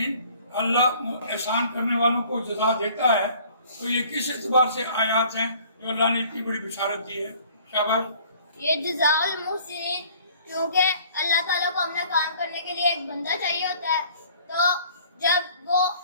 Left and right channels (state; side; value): inverted; both; correlation -0.53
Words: اللہ احسان کرنے والوں کو جزا دیتا ہے. تو یہ کس اعتبار سے آیات ہیں جو اللہ نے اتنی بڑی بشارت دی ہے؟ شاباش. یہ جزاء المحسنین کیونکہ اللہ تعالیٰ کو اپنا کام کرنے کے لیے ایک بندہ چاہیے ہوتا ہے, تو جب وہ